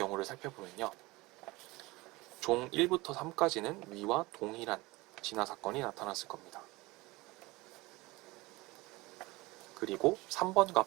살펴보면요. 종 1부터 3까지는 위와 동일한 진화사건이 나타났을 겁니다. 그리고 3번과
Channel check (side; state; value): left; quieter; 21.7 dB